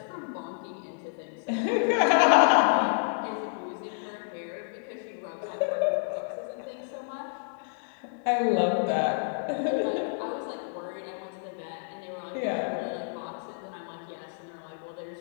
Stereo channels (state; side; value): silent; right; digital silence